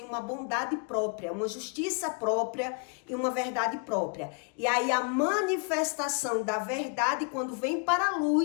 uma bondade própria, uma justiça própria e uma verdade própria. E aí, a manifestação da verdade, quando vem para a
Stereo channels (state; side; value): quieter; right; 36.1 dB